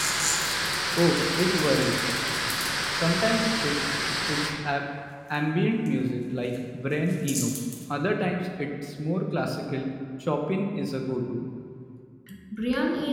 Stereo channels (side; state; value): both; identical; correlation 1.00